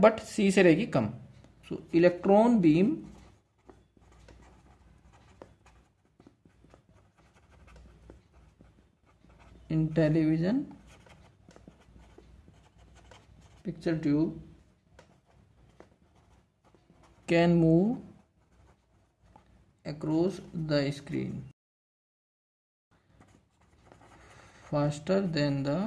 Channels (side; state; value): both; identical; correlation 1.00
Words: सी से रहेगी कम। So electron beam in television picture tube can move across the screen faster than the